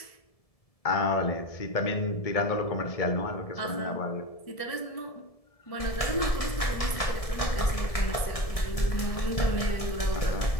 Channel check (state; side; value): late; right; 1.7 ms